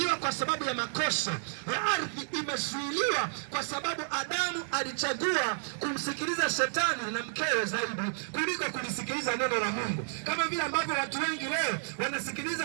kwa sababu ya makosa ya ardhi, imezuiliwa kwa sababu Adamu alichagua kumsikiliza shetani na mkewe zaidi kuliko kulisikiliza neno la Mungu. Kama vile ambavyo watu wengi leo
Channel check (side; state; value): left; silent; digital silence